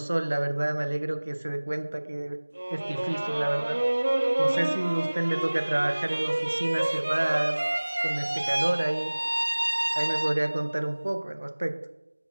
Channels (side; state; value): both; inverted; correlation -1.00